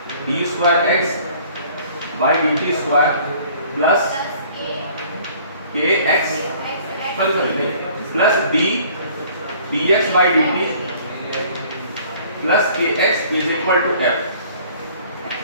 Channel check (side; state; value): both; inverted; correlation -0.54